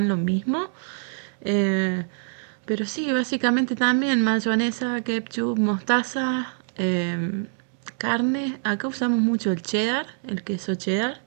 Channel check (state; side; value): silent; left; digital silence